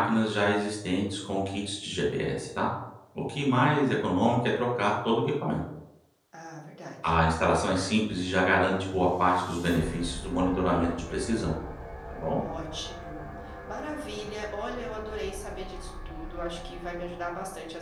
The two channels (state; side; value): identical; both; correlation 1.00